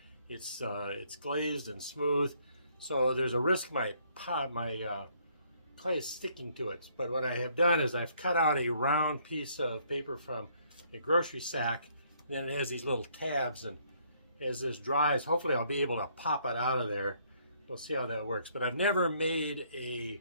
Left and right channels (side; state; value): both; inverted; correlation -0.66